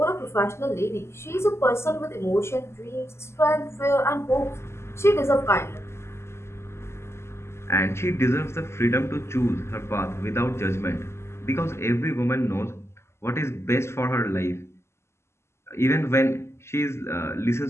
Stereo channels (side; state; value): right; late; 0.13 ms